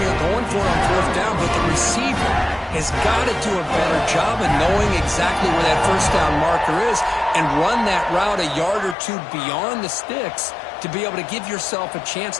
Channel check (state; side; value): drops out; right; at 9.0 s